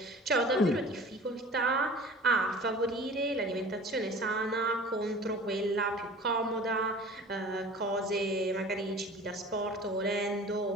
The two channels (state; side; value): normal; both; correlation 0.42